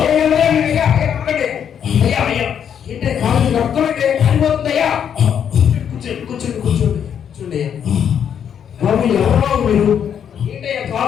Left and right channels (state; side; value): quieter; right; 8.4 dB